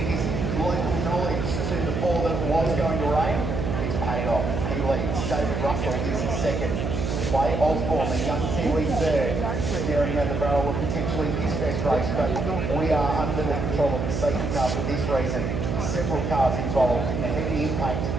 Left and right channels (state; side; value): noise; right; hum, 1 dB below the sound